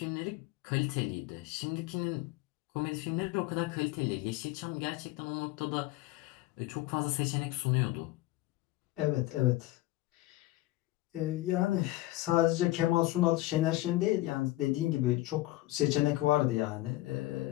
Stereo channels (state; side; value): quieter; right; 17.7 dB